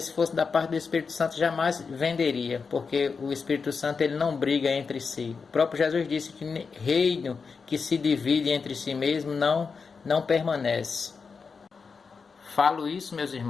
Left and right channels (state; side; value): quieter; right; 5.2 dB